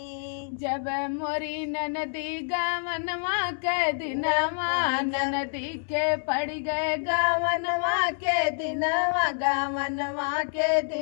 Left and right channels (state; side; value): silent; right; 59 dB below the other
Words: जब मोरी ननदी गवनवा के दिनवा, ननदी के पड़ गए गवनवा के दिनवा, गवनवा के